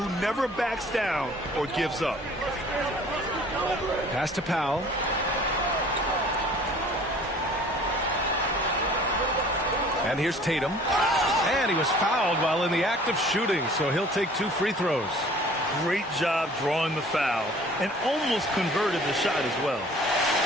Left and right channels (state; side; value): normal; both; correlation 0.50